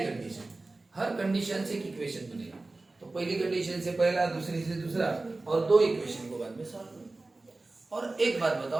हर कंडीशन से एक इक्वेशन बनेगा। तो पहली कंडीशन से पहला, दूसरी से दूसरा, और 2 इक्वेशन को बाद में सॉल्व करो। और एक बात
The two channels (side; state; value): left; quieter; 3.2 dB